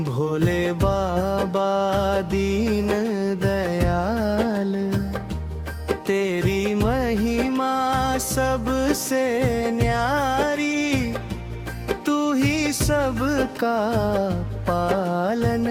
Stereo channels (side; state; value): both; identical; correlation 1.00